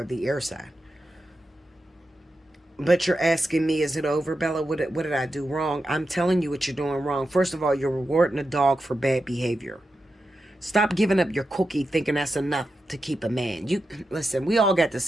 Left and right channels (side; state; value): both; normal; correlation 0.89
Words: the air sign. But you're asking me, is it over, Bella? What did I do wrong? I'm telling you what you're doing wrong. First of all, you're rewarding a dog for bad behavior. Stop giving up your cookie thinking that's enough to keep a man. You listen, we all got the